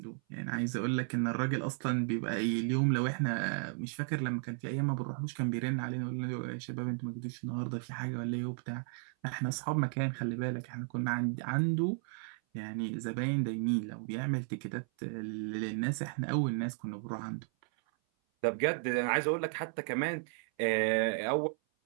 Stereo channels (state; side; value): silent; left; 55 dB below the other